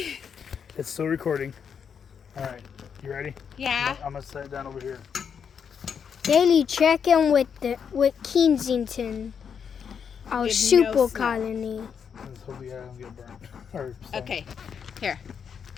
It's still recording. All right. You ready? Yeah. I'm going to set it down over here. Daily check-in with Kensington, our With super no snow. colony. Let's hope we don't get burnt. Or stung. Okay. Here.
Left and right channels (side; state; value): right; quieter; 7.1 dB